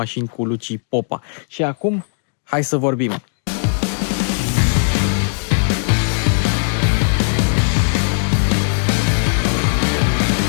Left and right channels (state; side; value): silent; right; digital silence